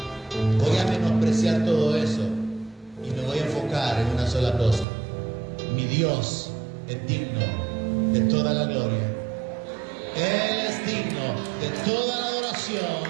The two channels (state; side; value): drops out; left; at 4.9 s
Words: Voy a menospreciar todo eso y me voy a enfocar en una sola cosa. Mi Dios es digno de toda la gloria. Él es digno de toda la adoración.